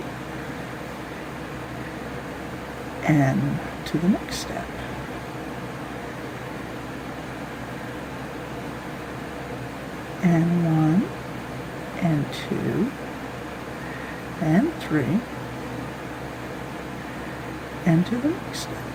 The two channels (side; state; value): both; identical; correlation 1.00